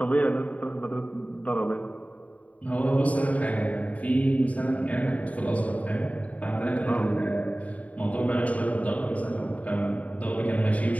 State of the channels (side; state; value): right; late; 0.069 ms